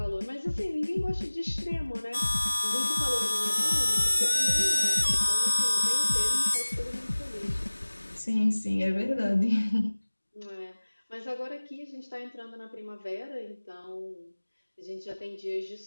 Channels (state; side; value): inverted; both; correlation -1.00